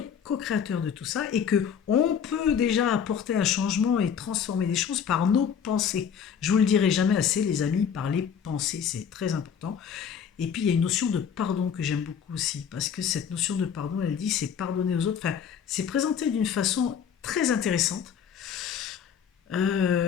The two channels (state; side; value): quieter; right; 7.6 dB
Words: co-créateur de tout ça et que on peut déjà apporter un changement et transformer les choses par nos pensées. Je vous le dirai jamais assez, les amis, par les pensées, c'est très important. Et puis il y a une notion de pardon que j'aime beaucoup aussi, parce que cette notion de pardon, elle dit c'est pardonner aux autres. Enfin, c'est présenté d'une façon très intéressante.